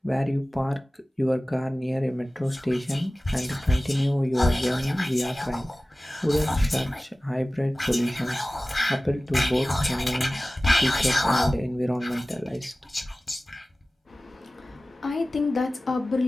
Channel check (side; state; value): both; normal; correlation 0.97